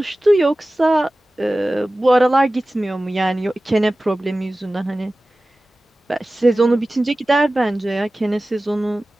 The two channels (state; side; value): normal; both; correlation 0.96